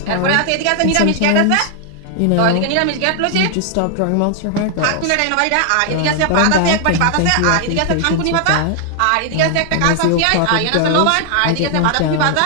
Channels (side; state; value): both; different; correlation 0.00